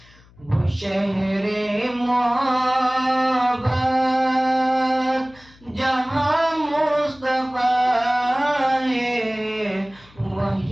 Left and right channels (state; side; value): noise; left; hum, 27 dB below the sound